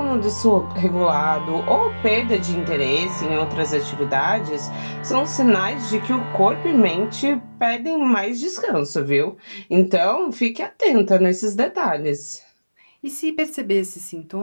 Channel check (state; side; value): inverted; both; correlation -1.00